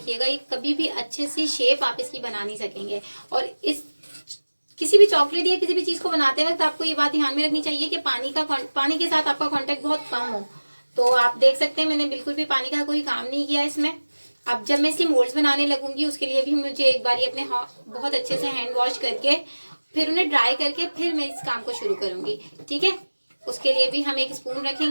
ये कभी भी अच्छे से शेप आप इसकी बना नहीं सकेंगे। और इस किसी भी चॉकलेट या किसी भी चीज को बनाते वक्त आपको ये बात ध्यान में रखनी चाहिए कि पानी के साथ आपका कांटेक्ट बहुत कम हो। तो आप देख सकते हैं मैंने बिल्कुल भी पानी का कोई काम नहीं किया इसमें। अब जब मैं इसके मोल्ड्स बनाने लगूंगी उसके लिए भी मुझे एक बार अपने बहुत अच्छे से हैंड वॉश करके फिर उन्हें ड्राई करके फिर मैं इस काम को शुरू करूंगी। ठीक है, उसके लिए भी हम एक स्पून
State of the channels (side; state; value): both; inverted; correlation -1.00